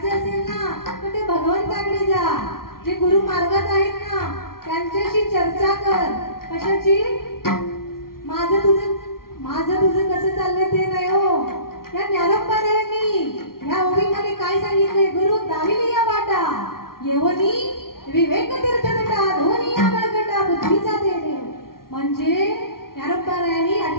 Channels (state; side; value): late; right; 0.93 ms